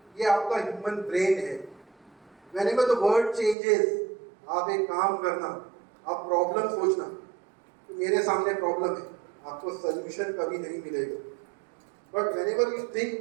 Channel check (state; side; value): drops out; left; at 3.6 s